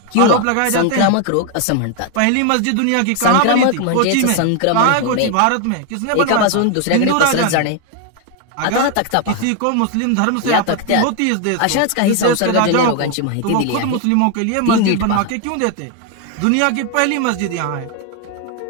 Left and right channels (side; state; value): both; different; correlation 0.01